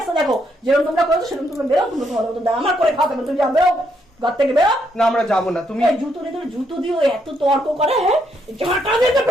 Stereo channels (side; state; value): both; normal; correlation 0.75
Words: দেখো, যেরকম তোমরা করেছো সেরকম তোমরা বেরো, তোমরা তোমার মতো দাও। আমার করে খাতে তুমি যা বেরো ঘর থেকে বেরো। না আমরা যাবো না, তুমি এই জুতো নিয়ে তোর জুতো দিও এত তর্ক করে, হ্যাঁ ঝাঁটা দিয়ে তো